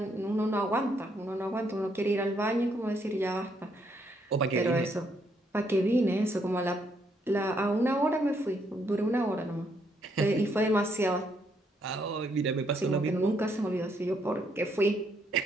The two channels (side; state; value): both; normal; correlation 0.73